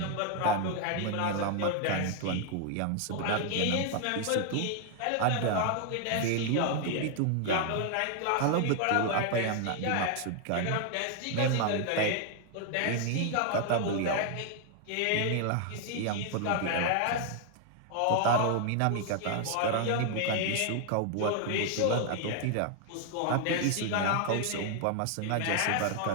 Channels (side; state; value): both; different; correlation 0.00